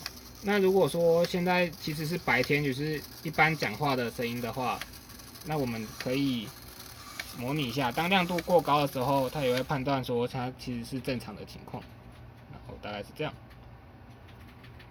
那如果说现在其实是白天，就是一般讲话的声音的话，那我们可以模拟一下，当亮度过高的时候，它也会判断说它其实是正常的情况，然后大概是这样。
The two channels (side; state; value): both; identical; correlation 1.00